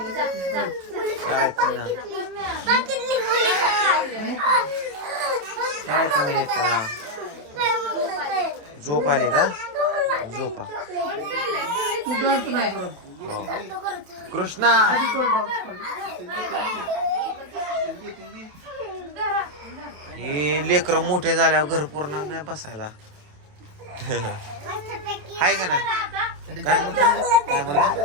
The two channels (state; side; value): late; left; 28 ms